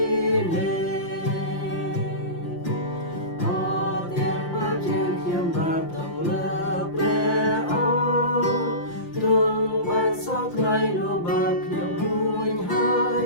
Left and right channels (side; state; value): right; late; 5.8 ms